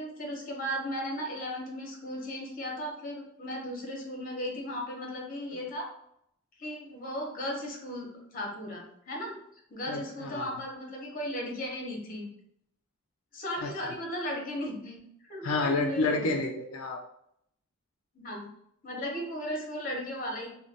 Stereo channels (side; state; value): both; normal; correlation 0.15